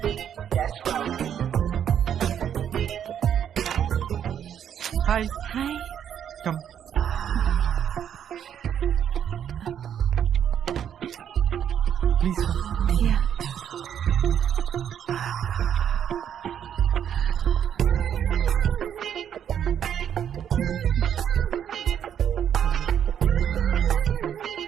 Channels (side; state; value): left; quieter; 9.1 dB